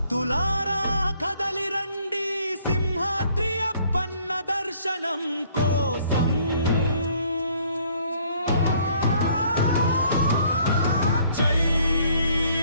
కదలి రండి సింహాద్రి అప్పన్న దర్శనం కోసం. జై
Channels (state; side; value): inverted; both; correlation -0.62